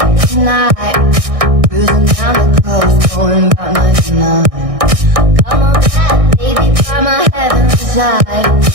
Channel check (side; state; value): left; late; 1.6 ms